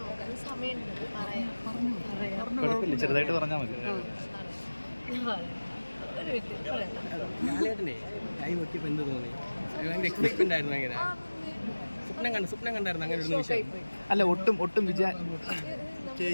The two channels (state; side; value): inverted; both; correlation -1.00